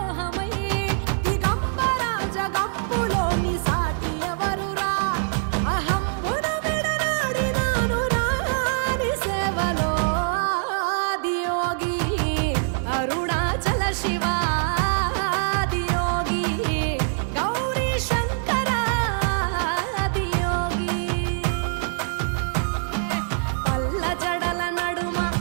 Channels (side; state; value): left; silent; 56 dB below the other